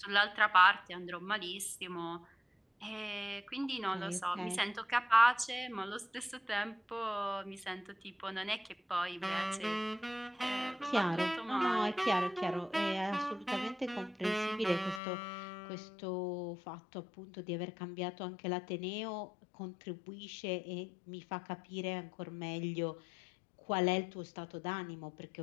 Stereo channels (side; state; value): right; drops out; at 15.0 s